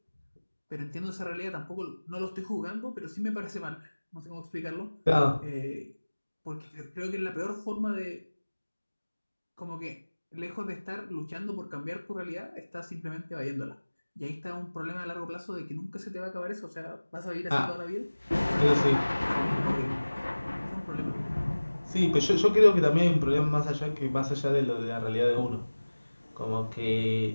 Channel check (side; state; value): both; inverted; correlation -1.00